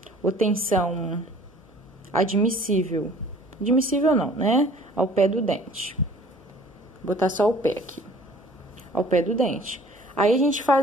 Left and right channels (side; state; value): both; normal; correlation 0.51